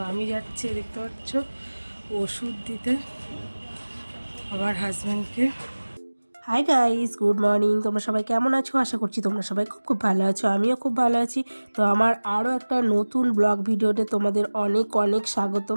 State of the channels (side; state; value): both; inverted; correlation -1.00